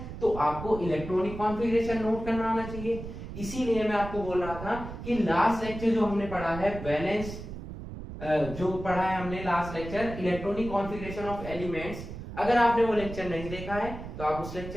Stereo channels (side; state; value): right; noise; rumble, 10 dB below the sound